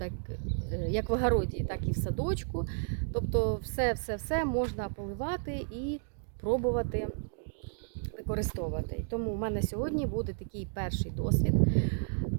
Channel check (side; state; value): left; silent; digital silence